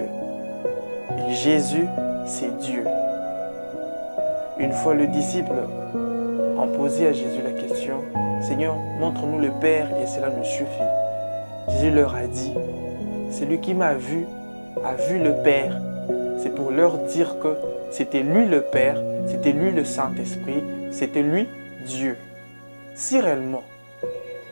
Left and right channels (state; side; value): inverted; both; correlation -1.00